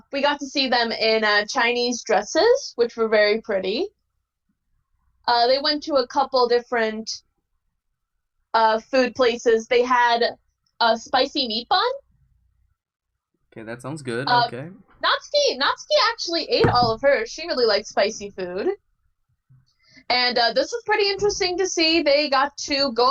we got to see them in Chinese dresses, which were very pretty. They went to a couple different food places. They had a spicy meat bun. Okay, that sounds good. Okay. Natsuki actually ate all of hers. She really liked spicy food. And this was pretty interesting to see. They got to go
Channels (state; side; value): identical; both; correlation 1.00